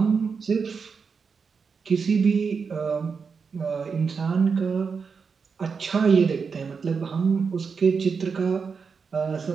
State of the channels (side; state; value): left; quieter; 5.5 dB